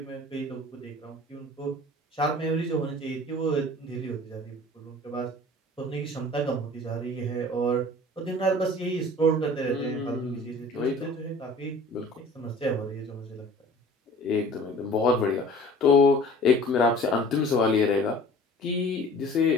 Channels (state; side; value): normal; both; correlation 0.46